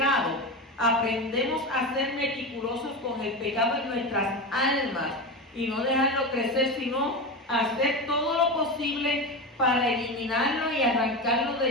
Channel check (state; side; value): normal; both; correlation 0.21